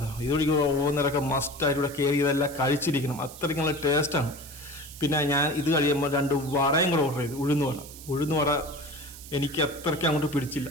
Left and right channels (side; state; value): right; noise; hiss, 16 dB below the sound